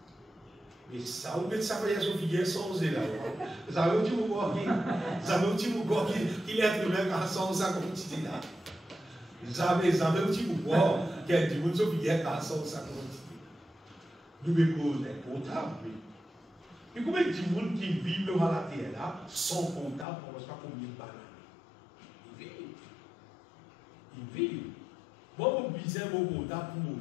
Et ça, vous mettez ça pour les filles sans là. Vous savez où tu vous vois qu'il est un même sans ça comme tu là. Vous savez où tu vous vois qu'il y a du monde qui est sans ça comme tu nous mettons des portables. Et combien de monde qui vivent dans la terre là, sans portable, on ne sait pas combien de bananes. Ils vivent. Moi, je besoin mon portable pour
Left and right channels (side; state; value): right; drops out; at 20.1 s